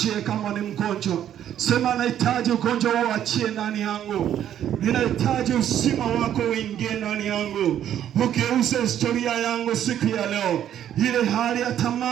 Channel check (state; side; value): quieter; left; 10.5 dB